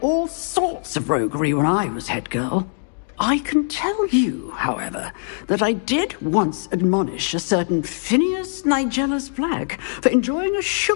all sorts of roguery when I was head girl. I can tell you, however, that I did once admonish a certain Phineas Nigellus Black for enjoying a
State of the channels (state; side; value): silent; right; digital silence